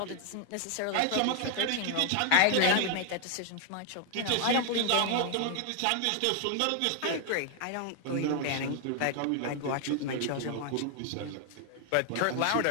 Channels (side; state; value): both; different; correlation 0.00